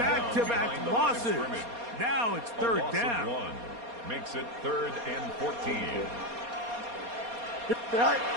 losses. Now it's third down. Makes it 3rd and 14. To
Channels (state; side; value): late; left; 4.2 ms